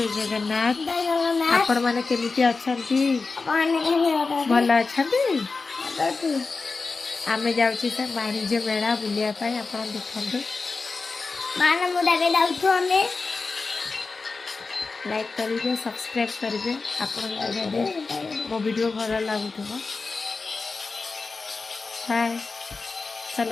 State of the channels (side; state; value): right; quieter; 4.1 dB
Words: जगन्नाथ आपण माने केमिति अछंती भल अछंती आमे जाउची से वाणिज्य मेला बुलिया पाई आपण देखंतु माने मुडा के जाउछु हमें लाइक करिवे सब्सक्राइब करिवे आपण जदे मो वीडियो भल लागुथबो हाय